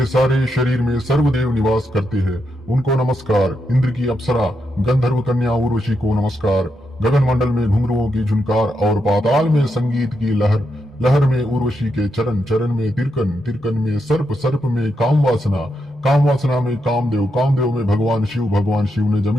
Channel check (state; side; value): normal; both; correlation 0.83